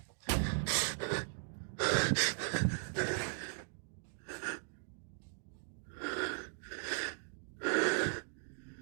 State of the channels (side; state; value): left; silent; digital silence